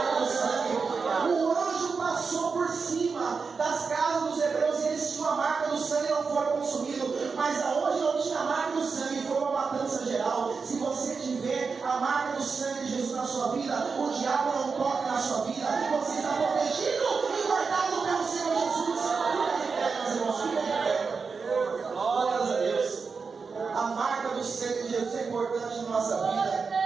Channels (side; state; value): left; quieter; 5.0 dB